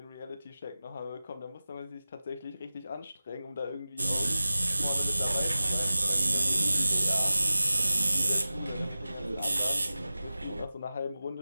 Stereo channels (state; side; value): inverted; both; correlation -0.96